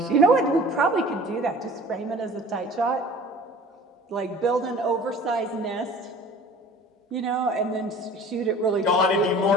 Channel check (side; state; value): both; normal; correlation 0.45